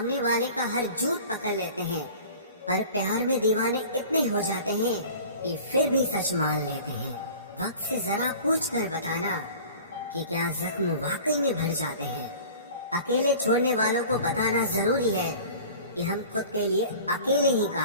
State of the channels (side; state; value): both; inverted; correlation -0.43